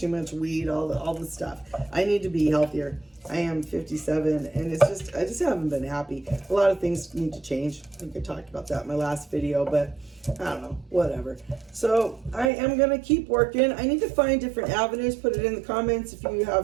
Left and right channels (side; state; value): left; drops out; at 12.5 s